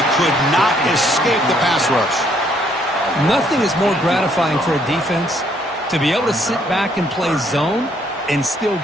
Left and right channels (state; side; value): normal; both; correlation 0.68